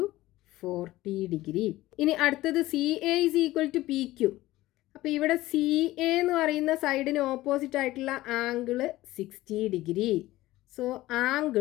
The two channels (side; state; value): right; quieter; 17.0 dB